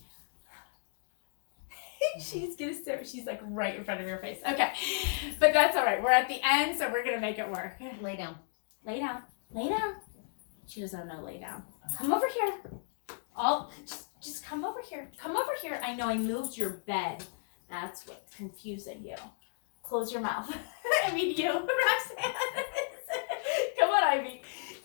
She's gonna stare. She's like right in front of your face. Okay, but that's all right. We're at the end, so we're gonna make it work. Lay down. Lay down. Lay down. She doesn't know lay down. Come over here. Just come over here. Come over here. I know I moved your bed. That's what's confusing you. Close your mouth. I mean you, Roxanne. Come on, Ivy.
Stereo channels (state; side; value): silent; right; digital silence